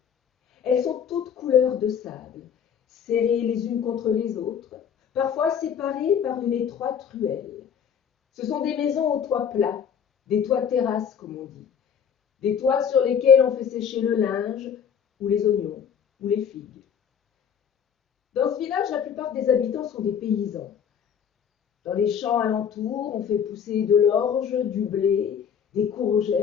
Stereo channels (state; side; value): quieter; right; 7.7 dB